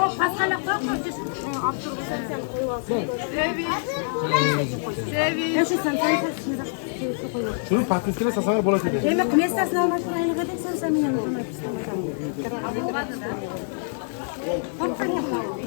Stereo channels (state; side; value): silent; right; digital silence